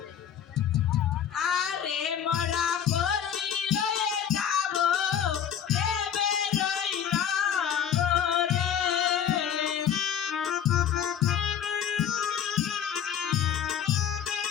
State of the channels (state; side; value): quieter; right; 8.9 dB